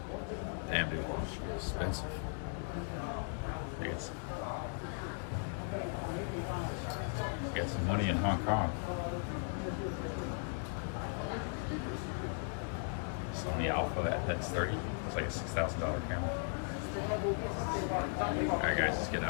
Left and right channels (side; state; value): right; silent; 53 dB below the other